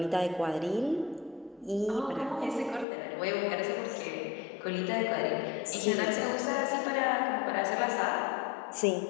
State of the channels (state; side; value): drops out; right; at 2.9 s